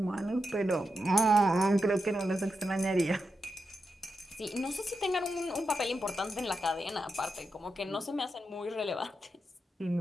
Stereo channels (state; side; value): normal; both; correlation 0.87